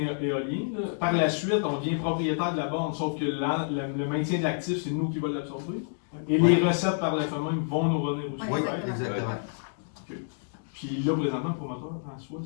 là, par la suite, on devient propriétaire de la borne, sauf que le maintien de l'actif, c'est nous qui va l'absorber. Et les recettes par le fait même vont nous revenir aussi. Ouais, Oui, exactement. Puis là, présentement, le promoteur en soi,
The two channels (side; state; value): right; silent; digital silence